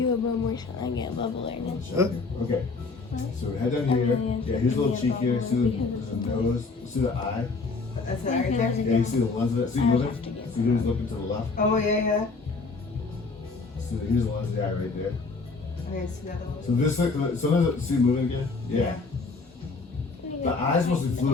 a bubble, so I get a bubble right now. Okay. So head down here. Yeah, here's a little cheek here. See the nose. See the eye. That's it right there. Yeah, you see the lens of it. See moving. See who's looking to the left. Oh yeah. So here's the lens of the eye right there. Okay, see that little. So this, sometimes see moving again. Yeah. The eye's mostly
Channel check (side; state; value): right; quieter; 4.1 dB